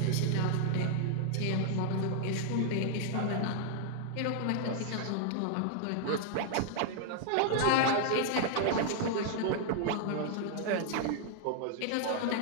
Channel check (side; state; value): both; different; correlation -0.01